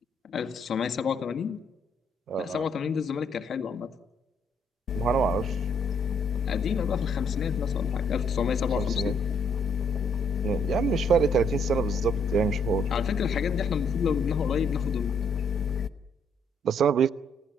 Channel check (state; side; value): normal; both; correlation 0.70